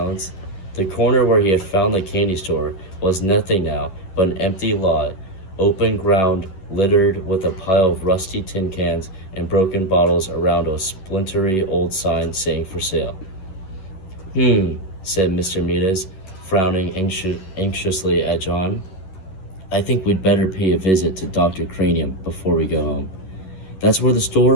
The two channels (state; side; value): late; right; 11 ms